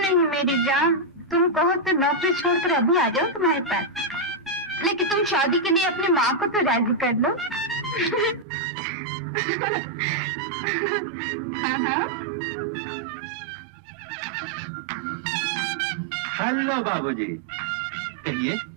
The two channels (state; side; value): drops out; left; at 8.5 s